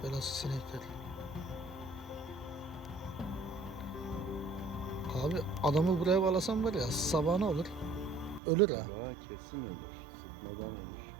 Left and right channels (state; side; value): drops out; left; at 8.4 s